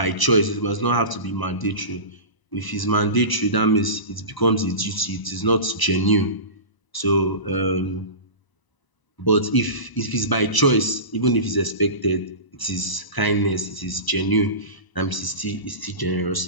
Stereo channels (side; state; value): right; late; 1.0 ms